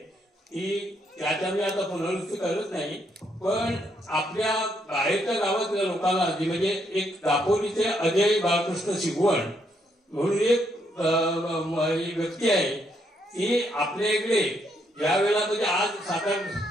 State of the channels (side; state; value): both; normal; correlation 0.75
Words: ती त्याच्या मी आता पुनरुक्ती करत नाही, पण आपल्या बाहेरच्या गावातल्या लोकांना जी म्हणजे एक दापोलीचे अजय बाळकृष्ण शिगवण म्हणून एक व्यक्ती आहे, ती आपल्या इकडे ज्या वेळेला म्हणजे आज